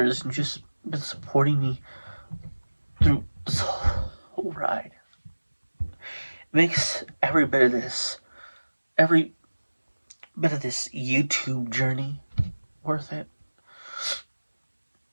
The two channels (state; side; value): inverted; both; correlation -1.00